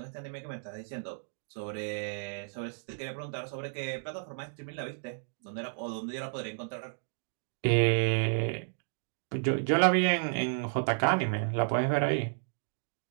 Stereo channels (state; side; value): silent; left; digital silence